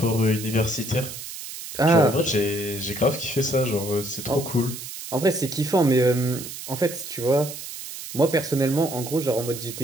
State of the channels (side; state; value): right; noise; hiss, 10 dB below the sound